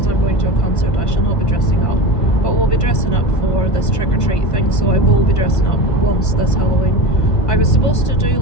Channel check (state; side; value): late; right; 1.5 ms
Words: I'm going to a concert, I shall not be dressing up. But we'll be dressing up for this trick-or-treat thing, so I will be dressing up once this Halloween. I was supposed to do